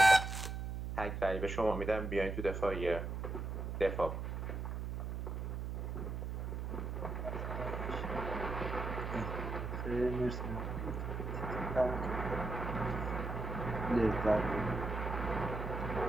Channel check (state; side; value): noise; right; hum, 4 dB below the sound